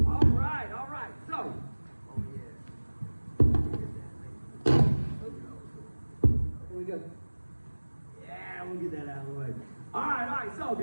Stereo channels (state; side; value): inverted; both; correlation -1.00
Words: All right. So, oh yeah. Here we go. Yeah, we'll get that out of the way. All right. So